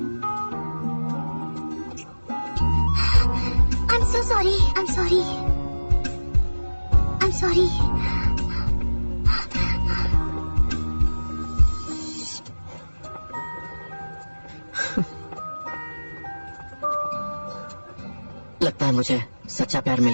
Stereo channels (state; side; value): inverted; both; correlation -1.00